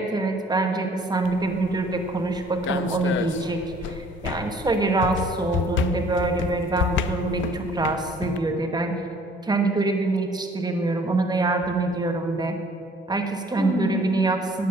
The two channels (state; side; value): normal; both; correlation 0.56